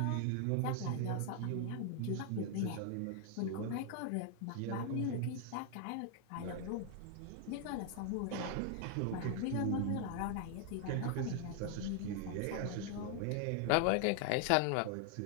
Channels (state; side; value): different; both; correlation 0.00